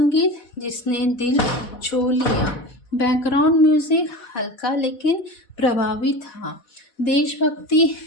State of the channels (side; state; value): right; late; 4.1 ms